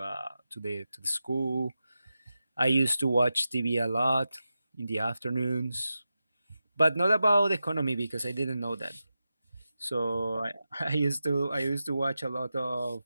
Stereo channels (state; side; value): inverted; both; correlation -0.91